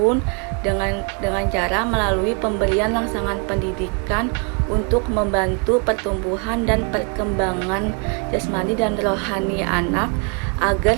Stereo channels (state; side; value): quieter; left; 35.7 dB